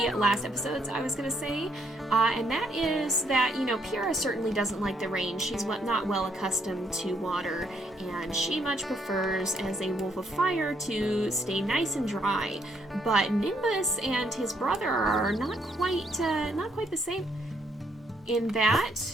last episodes, I was gonna say. And that is that, you know, Pyra certainly doesn't like the rain. She's not well accustomed to water, and she much prefers, as a wolf of fire, to stay nice and dry. But Nimbus and his brother are not quite the same in that.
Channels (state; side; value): normal; both; correlation 0.72